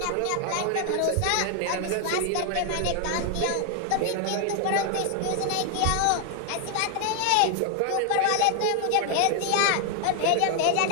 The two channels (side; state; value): both; different; correlation 0.00